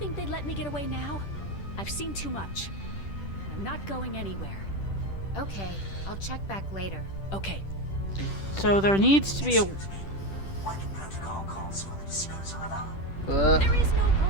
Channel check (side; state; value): right; late; 10 ms